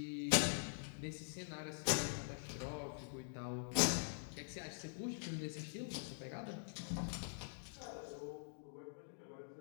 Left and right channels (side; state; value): right; silent; digital silence